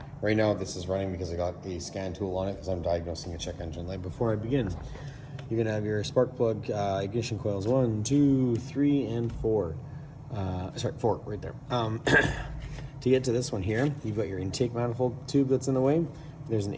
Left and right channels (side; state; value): both; identical; correlation 1.00